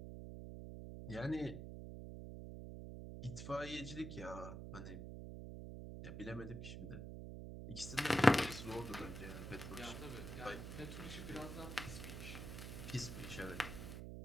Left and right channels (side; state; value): right; noise; hum, 7 dB below the sound